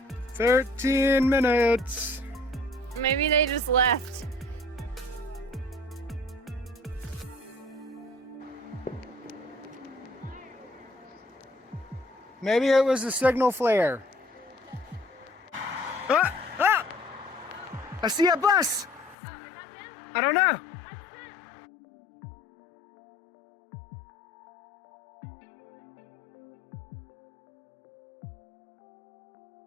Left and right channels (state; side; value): drops out; right; at 19.2 s